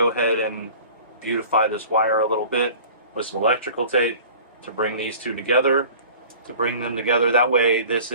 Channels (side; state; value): both; inverted; correlation -0.44